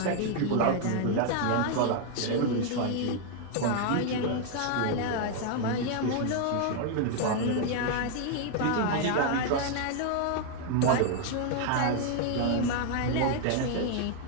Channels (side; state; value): both; different; correlation 0.00